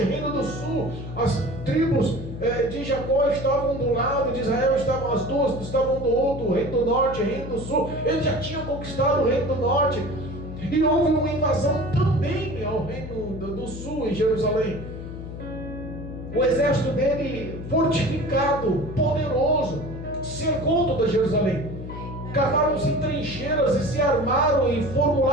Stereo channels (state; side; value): noise; left; hum, 10 dB below the sound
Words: o reino do sul. As tribos de Jacó estavam do lado, de Israel estavam as duas, estavam do outro, o reino do norte, o reino do sul. Ele já tinha conquistado o reino do norte. E houve uma invasão também ao reino do sul, em Jerusalém. O exército dele, fortificado, poderoso, cercou toda Jerusalém. Cavaram-se trincheiras e se armaram e